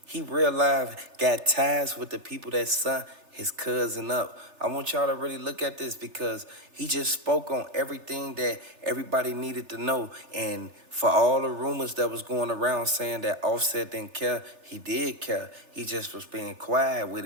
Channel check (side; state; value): left; late; 3.3 ms